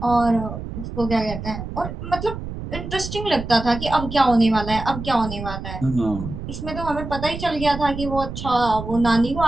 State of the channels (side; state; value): right; noise; rumble, 8 dB below the sound